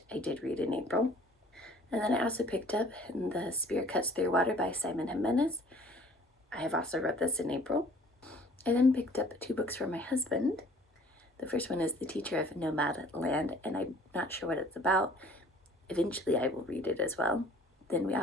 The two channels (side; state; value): both; normal; correlation 0.53